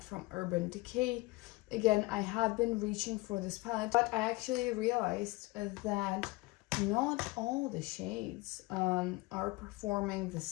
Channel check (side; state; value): right; quieter; 22.3 dB